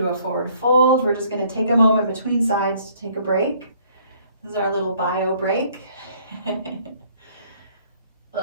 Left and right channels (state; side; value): inverted; both; correlation -0.61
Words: a forward fold. We're just going to take a moment between sides to take a break. This is our little bio break. I